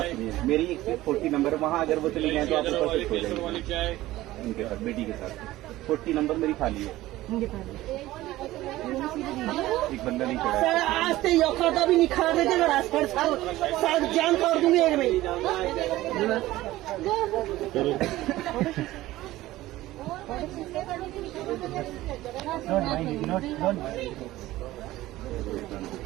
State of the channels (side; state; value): left; quieter; 16.5 dB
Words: सुनिए, मेरी एक सीट 40 नंबर, वहाँ अगर वो चली गए तो आप ऊपर शिफ्ट हो जाएंगे उनके साथ, बेटी के साथ। 40 नंबर मेरी खाली है, एक बंदा नहीं चढ़ा है। आज से औकात भी निखार देते ना, साथ जान तोड़ दूंगी एक में।